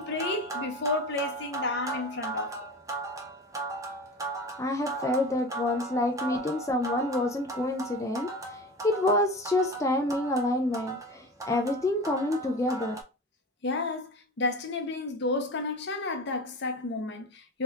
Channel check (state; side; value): normal; both; correlation 0.32